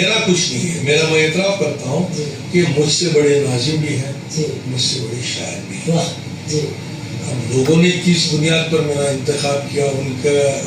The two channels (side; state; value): both; identical; correlation 1.00